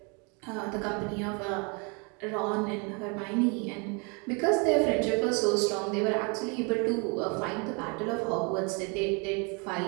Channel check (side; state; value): left; quieter; 32.8 dB